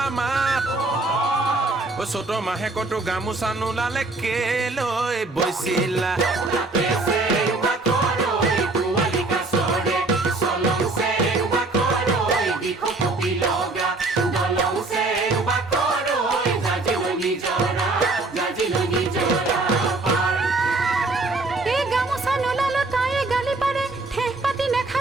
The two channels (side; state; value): left; quieter; 3.2 dB